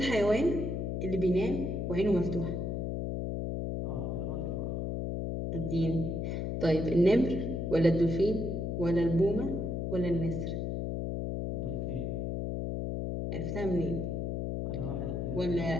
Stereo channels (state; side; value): noise; left; hum, 1 dB below the sound